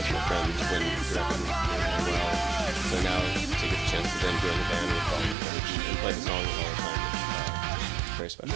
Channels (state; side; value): drops out; left; at 5.4 s